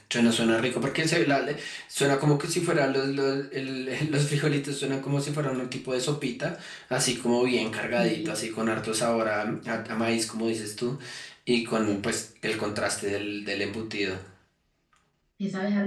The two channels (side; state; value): both; identical; correlation 1.00